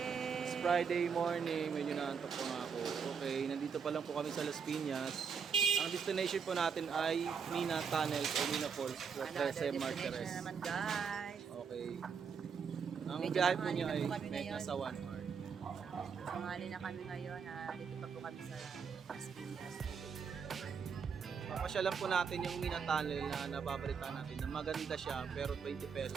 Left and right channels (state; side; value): quieter; left; 6.3 dB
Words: It's Friday morning, medyo naantok po nga ako. Okay, nandito pa lang po kami sa Las Piñas. Ang destination po natin ay Mina Tunnels o Mina Falls sa Trece Martires. Na naman guys. Okay. Ang Medyo biyahe po tanghali niya na ay po kami ngayon. nasa 1 hour. Sangali na kami ngayon. Dito pa po kami sa Las Piñas. Papasyalan po natin yung Mina Tunnel na nababalita natin na maganda siya pero 20